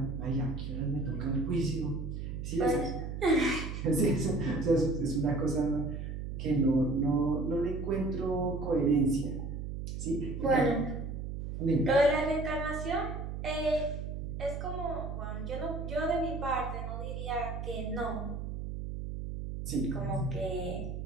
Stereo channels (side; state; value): right; noise; hum, 5 dB below the sound